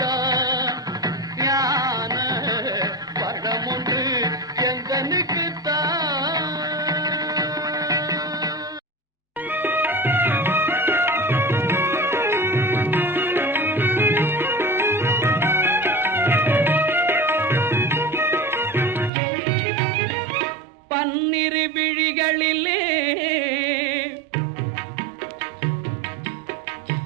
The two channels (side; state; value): left; drops out; at 19.1 s